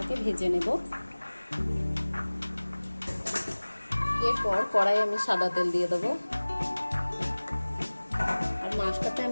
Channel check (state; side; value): inverted; both; correlation -1.00